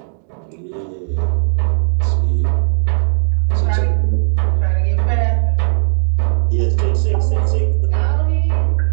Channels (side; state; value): left; silent; 69 dB below the other